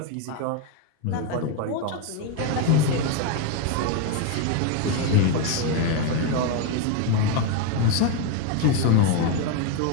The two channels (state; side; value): different; both; correlation 0.02